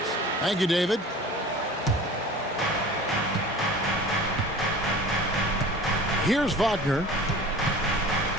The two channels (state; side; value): normal; both; correlation 0.41